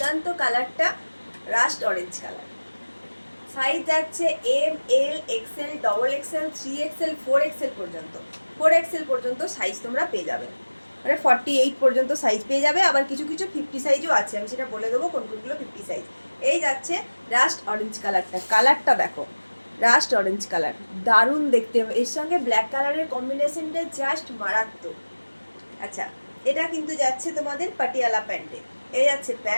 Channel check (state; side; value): inverted; both; correlation -1.00